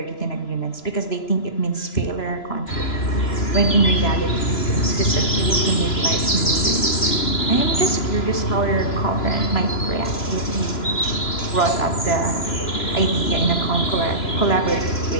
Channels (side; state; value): right; late; 3.0 ms